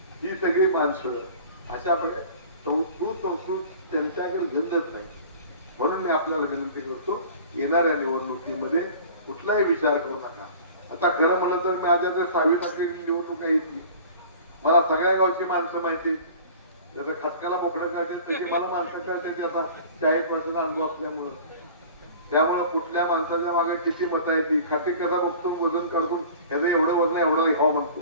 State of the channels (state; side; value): inverted; both; correlation -0.43